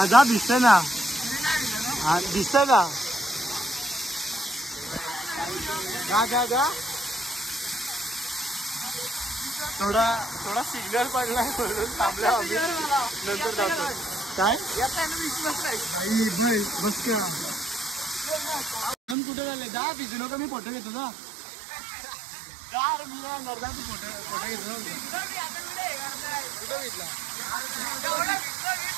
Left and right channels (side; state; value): left; drops out; at 19.2 s